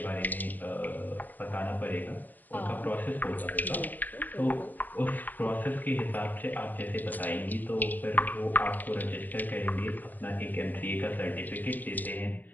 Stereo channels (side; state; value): right; late; 0.087 ms